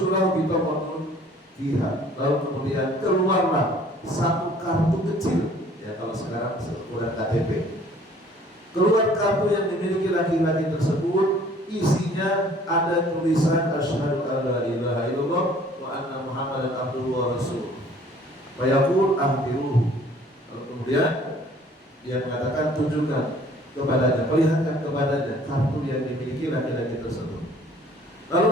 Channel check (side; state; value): both; normal; correlation 0.54